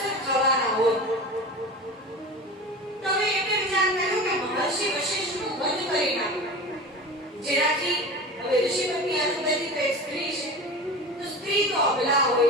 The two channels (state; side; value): normal; both; correlation 0.32